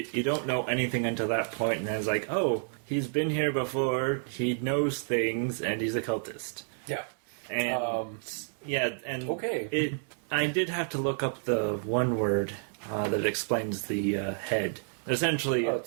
don't know anything until that point, and then it's like, oh, he's been here before, he knows things, and he's a cultist. Yeah. And, okay. I did have to look up the one word that explains the head. Essentially,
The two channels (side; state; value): left; silent; 58 dB below the other